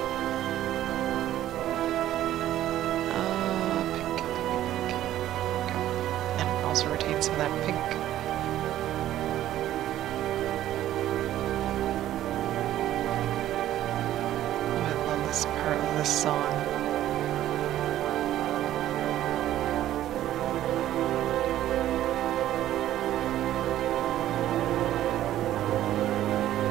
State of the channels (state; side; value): quieter; left; 13.0 dB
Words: Also retain some of that pink. this part of this song.